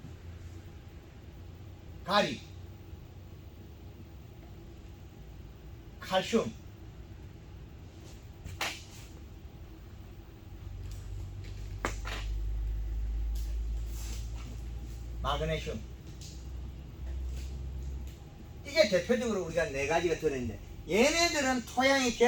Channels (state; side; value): identical; both; correlation 1.00